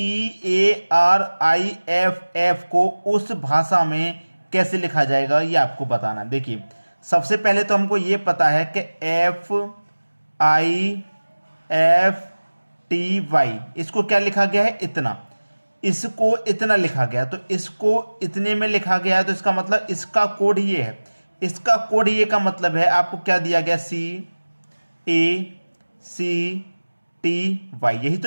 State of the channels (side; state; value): both; inverted; correlation -1.00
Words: को उस भाषा में कैसे लिखा जाएगा, ये आपको बताना। देखिए, सबसे पहले तो हमको ये पता है कि FIFTY इसको क्या लिखा गया है, इतना। इसको इतना लिखा गया, तो इसको इतने में लिखा गया है, तो इसका मतलब इसका कोड ये है। इसका कोड ये का मतलब है, आपको क्या दिया गया, CACTY, यही